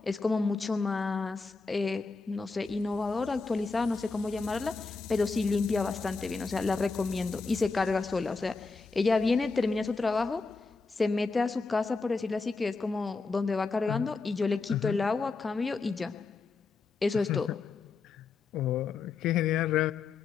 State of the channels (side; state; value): right; quieter; 4.2 dB